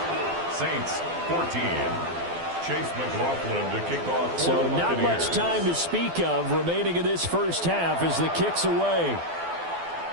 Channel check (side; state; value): left; late; 12 ms